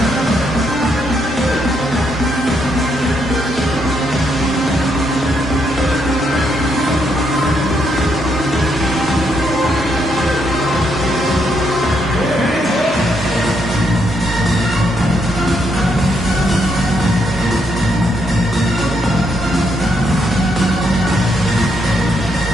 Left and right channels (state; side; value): normal; both; correlation 0.76